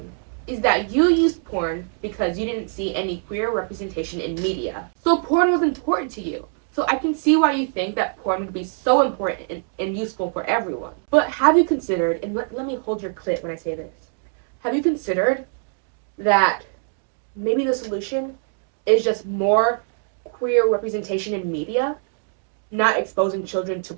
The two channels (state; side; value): silent; left; 59 dB below the other